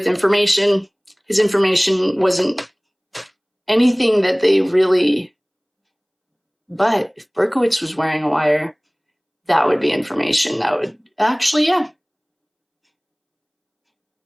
information. His information wasn't anything that they really... But if Berkowitz was wearing a wire, that would be information that would... Actually, yeah.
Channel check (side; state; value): both; identical; correlation 1.00